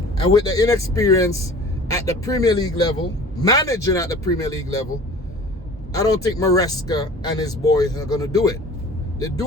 And with the inexperience at the Premier League level, managing at the Premier League level, I don't think Maresca and his boys are going to do it. They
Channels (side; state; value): both; normal; correlation 0.44